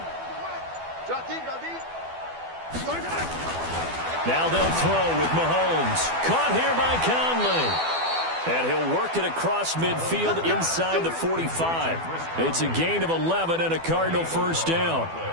Drop deep. Now they'll throw with Mahomes. Caught here by Conley. And he'll work it across midfield inside the 45. It's a gain of 11 and a Cardinal first down.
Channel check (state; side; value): late; left; 12 ms